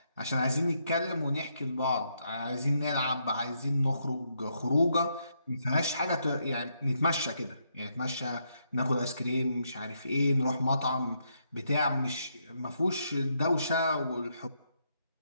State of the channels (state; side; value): inverted; both; correlation -0.77